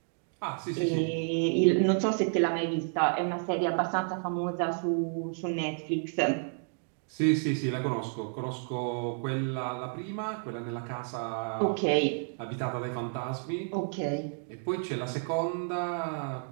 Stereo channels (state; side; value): silent; left; 57 dB below the other